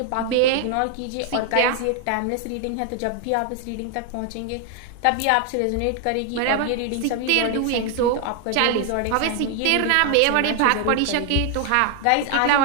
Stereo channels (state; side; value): different; both; correlation 0.00